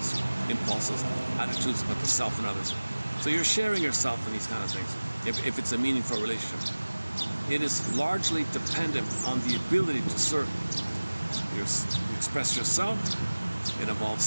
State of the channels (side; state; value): both; inverted; correlation -1.00